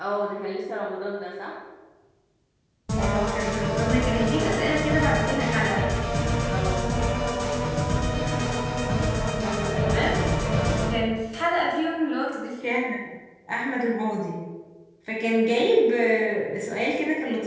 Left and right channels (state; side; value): identical; both; correlation 1.00